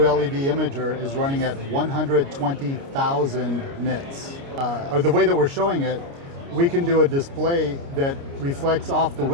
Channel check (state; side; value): late; left; 29 ms